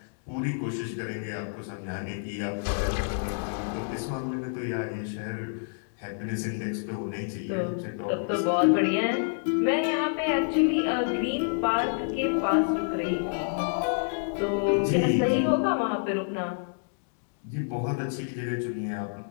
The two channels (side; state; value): right; silent; digital silence